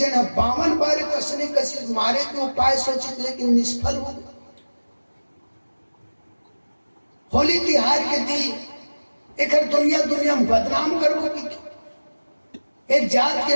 52 बार कसने कसी मारे के उपाय सोचित लेकिन निष्फल हो गए। होली तिहार के दिन एक दुनिया में बदनाम करबो की, एक जात के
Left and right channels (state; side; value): inverted; both; correlation -1.00